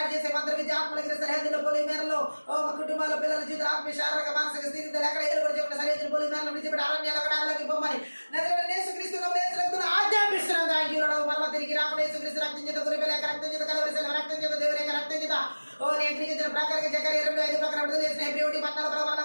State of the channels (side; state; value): both; inverted; correlation -1.00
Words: చేసే మంత్రబీజ ఆత్మల క్రియ సరిహద్దులో పోలి మేరలో ఓ కుటుంబాల పిల్లల జీవితాల ఆత్మీయ శారీరక మానసిక స్థితిలో ఎక్కడ ఏలుబడి చెప్పిన సరిహద్దులు పోలి మేరలో విడిచిపెట్టి అరణ్యాలు అక్కడ అడవిలోకి పొమ్మని నజరేయుడైన యేసుక్రీస్తును ఆజ్ఞాపిస్తున్నాం. Thank you lord. మరలా తిరిగి రాకుండా యేసుక్రీస్తు రక్తం చేత గురిపేల రక్తం చేత కలవరిసిన రక్తం చేత దేవుని యొక్క రక్తం చేత ఓ నేర్పించిన ప్రకారంగా జకర్యా 2:5 ప్రకారం విడుదల చేసిన హెబ్రీ 14